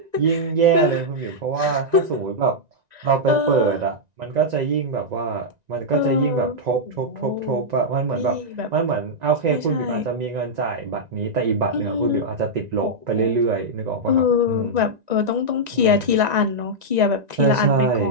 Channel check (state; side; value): late; left; 1.9 ms